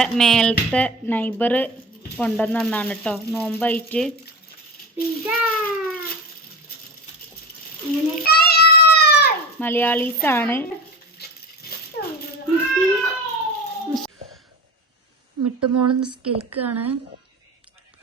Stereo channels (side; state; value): both; normal; correlation 0.29